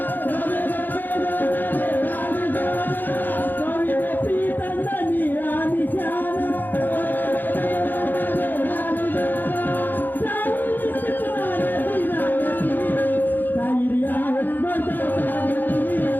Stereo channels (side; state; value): right; late; 0.090 ms